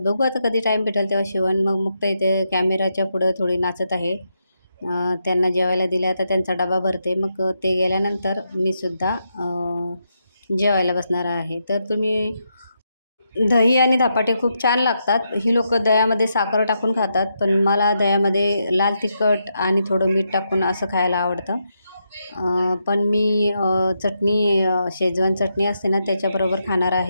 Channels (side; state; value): both; inverted; correlation -0.83